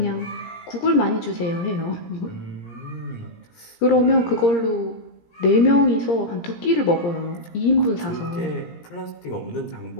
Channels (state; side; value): late; right; 17 ms